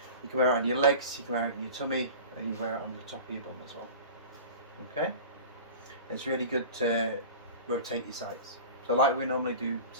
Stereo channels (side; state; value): both; inverted; correlation -0.37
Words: you can wear it on your legs, you can wear it on your tummy, and you wear it on the top of your bum as well. Okay, it's really good to rotate your sites. So like we normally do,